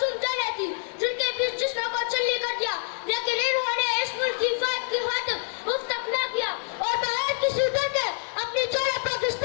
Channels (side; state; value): right; silent; 61 dB below the other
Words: جانیں تھی جن کے بیچ جسموں کو چلی کر دیا، لیکن انہوں نے اس ملک کی حفاظت کی خاطر اف تک نہ کیا اور بغیر کسی ڈر کے اپنی جانیں